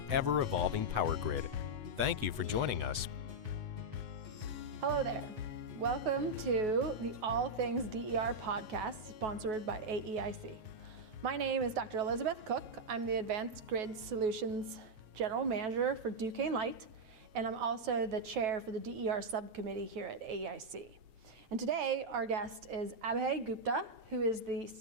ever-evolving power grid. Thank you for joining us. Hello there. Welcome to the All Things DER podcast, sponsored by AEIC. My name is Dr. Elizabeth Cook. I'm the Advanced Grid Solutions General Manager for Duquesne Light, and I'm also the chair for the DER subcommittee here at AEIC. And today, our guest is Abhay Gupta, who is the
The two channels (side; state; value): left; late; 8.0 ms